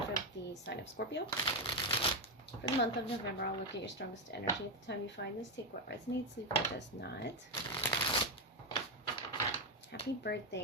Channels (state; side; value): normal; both; correlation 0.07